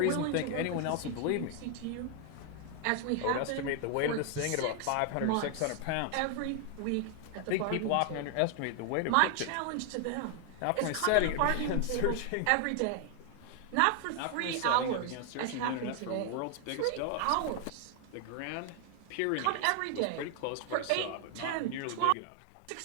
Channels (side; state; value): both; different; correlation 0.00